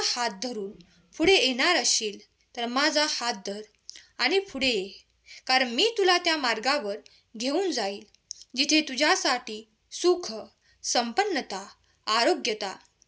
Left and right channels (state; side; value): identical; both; correlation 1.00